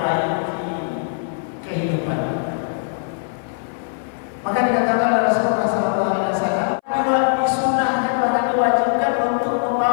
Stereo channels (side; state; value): right; silent; 60 dB below the other